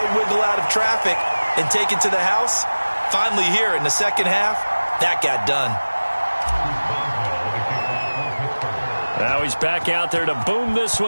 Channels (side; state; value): both; inverted; correlation -1.00